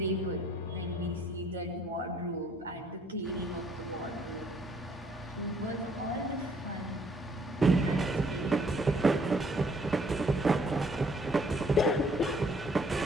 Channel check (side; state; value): both; normal; correlation 0.63